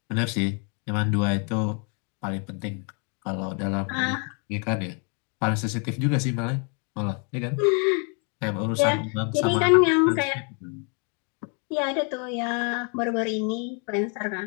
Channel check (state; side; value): quieter; right; 38.4 dB